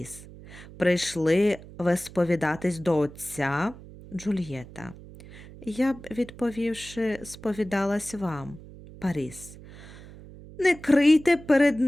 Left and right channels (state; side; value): noise; right; hum, 18 dB below the sound